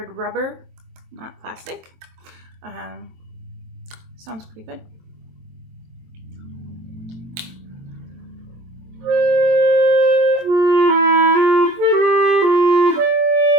rubber, not plastic. Sounds pretty good.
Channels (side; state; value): left; late; 23 ms